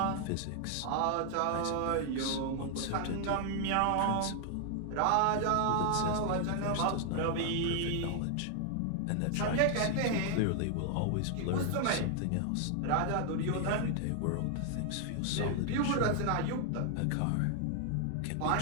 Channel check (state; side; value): different; both; correlation 0.00